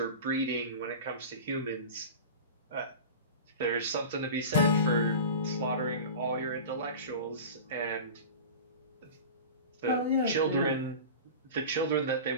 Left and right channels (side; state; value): both; inverted; correlation -0.32